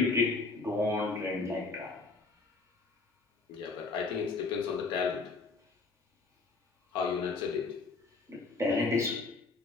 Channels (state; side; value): quieter; right; 3.9 dB